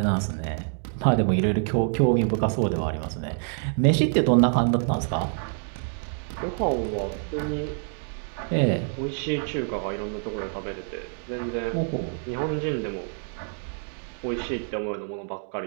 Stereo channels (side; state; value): left; silent; 60 dB below the other